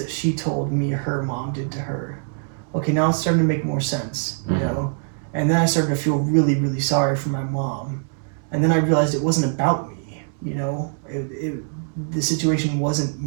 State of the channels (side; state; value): left; silent; digital silence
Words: she told me her mom did to her? Okay, now it's starting to make more sense, And then I started to feel really, really sorry for my mom. And then I realized it wasn't about me, the situation wasn't